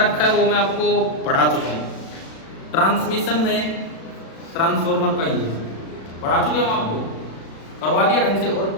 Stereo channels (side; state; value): right; late; 36 ms